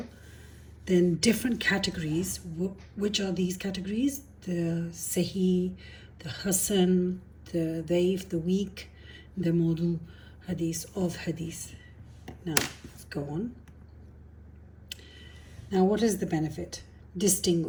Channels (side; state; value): both; identical; correlation 1.00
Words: Then different categories. Which are these categories? The Sahih, the Hasan, the Daif, the weak, the Mawdu Hadith of Hadith. Now, let's go on. Now, what is the benefit?